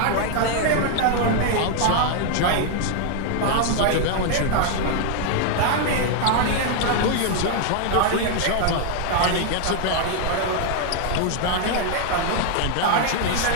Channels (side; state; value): both; different; correlation 0.00